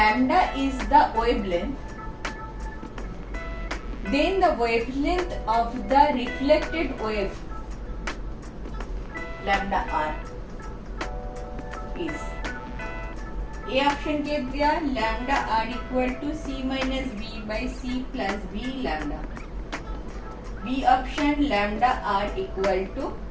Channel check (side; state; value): both; identical; correlation 1.00